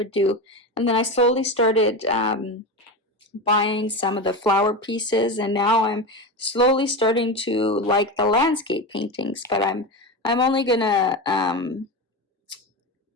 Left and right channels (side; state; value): both; normal; correlation 0.21